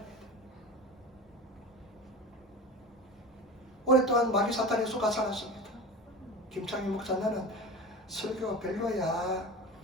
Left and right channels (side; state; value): both; normal; correlation 0.31